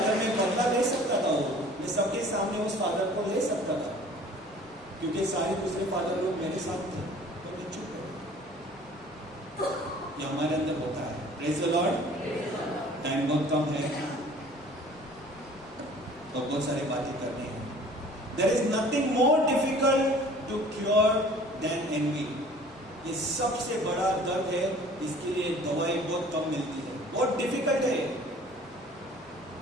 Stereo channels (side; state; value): both; normal; correlation 0.49